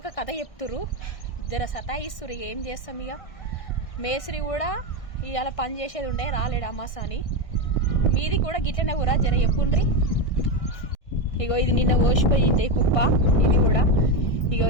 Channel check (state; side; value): late; right; 1.6 ms